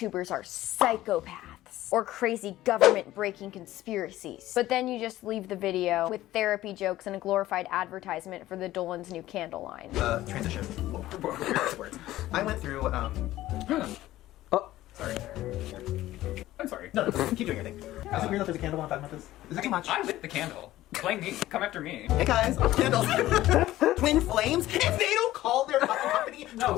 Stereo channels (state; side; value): quieter; right; 15.3 dB